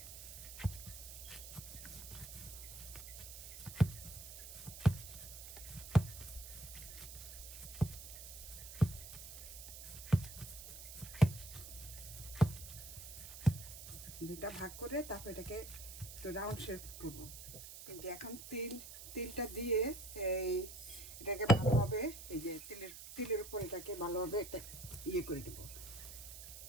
দুটা ভাগ করে তারপর এটাকে তো রাউন্ড শেপ করব। এই যে এখন তিলটা দিয়ে এই এটাকে ভালোভাবে, এই যে তিলের উপর এটাকে ভালোভাবে একটা করে দেবো।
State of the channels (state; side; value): noise; right; hiss, 11 dB below the sound